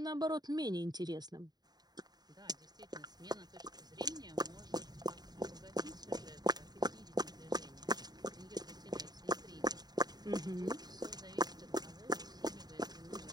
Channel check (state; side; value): late; left; 0.20 ms